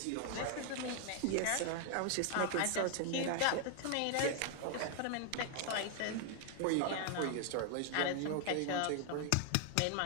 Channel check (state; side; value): different; both; correlation 0.00